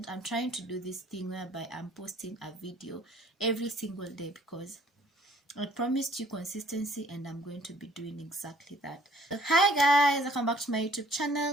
I'm trying to do this thing whereby I'm posting a video every single day because I promised you consistency, and I'm going to be doing exactly that. So, hi guys, welcome back to my YouTube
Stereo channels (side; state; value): both; normal; correlation 0.59